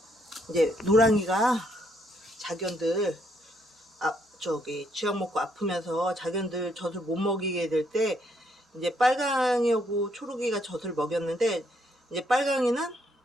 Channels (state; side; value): normal; both; correlation 0.72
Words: 이제 노랑이가 자견들 저기 쥐약 먹고 아프면서 자견들 젖을 못 먹이게 될 때 이제 빨강이하고 초록이가 젖을 먹였는데, 이제 빨강이는